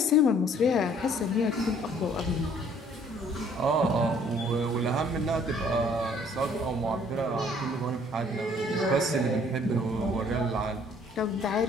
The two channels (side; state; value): both; normal; correlation 0.59